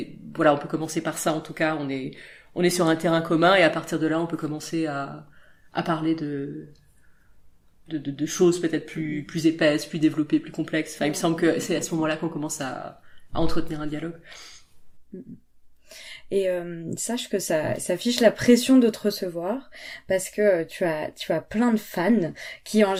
voilà, on peut commencer par ça, en tout cas, on est sur un terrain commun, et à partir de là, on peut commencer à parler de choses peut-être plus épaisses, plus développées, plus complexes. Enfin, il me semble que c'est à ce moment-là qu'on commence à entretenir un dialogue. Et sache que ça fiche la pression de te recevoir parce que tu as plein de fans qui en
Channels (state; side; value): identical; both; correlation 1.00